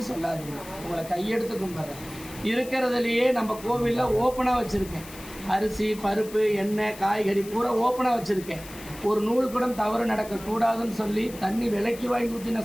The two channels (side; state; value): left; noise; hiss, 16 dB below the sound